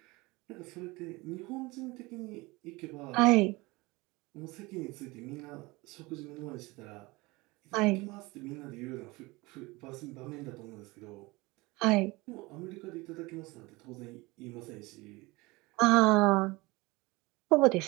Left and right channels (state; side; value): quieter; left; 23.1 dB